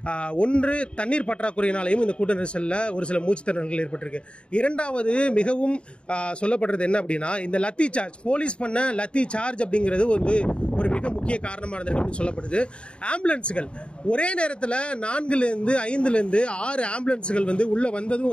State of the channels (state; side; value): late; right; 0.055 ms